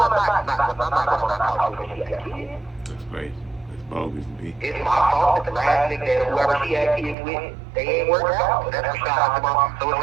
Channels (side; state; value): left; drops out; at 7.2 s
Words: not talk to her if she has kids. That's crazy. That's bogus to me. It's my fault that the last nigga that whoever she had kids with, they ain't worked out. So that's Rashad Jamal. So